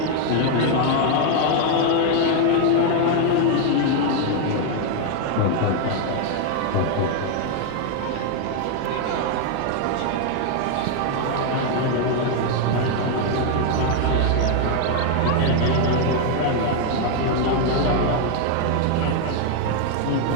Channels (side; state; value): both; different; correlation 0.01